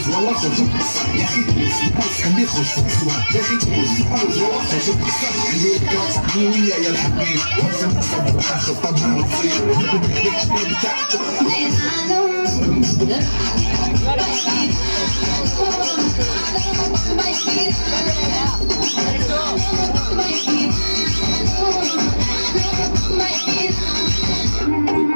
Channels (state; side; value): inverted; both; correlation -1.00